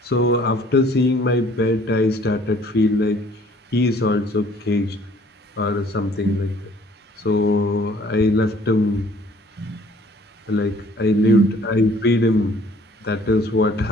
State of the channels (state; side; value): normal; both; correlation 0.57